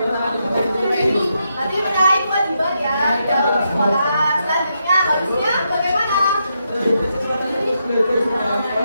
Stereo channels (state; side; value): inverted; both; correlation -0.82